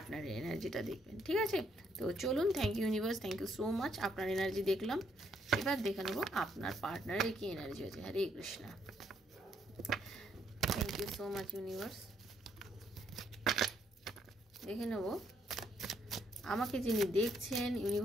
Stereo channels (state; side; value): normal; both; correlation 0.72